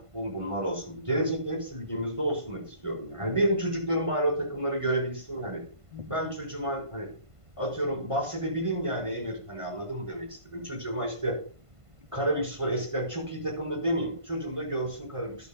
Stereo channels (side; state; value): left; late; 1.5 ms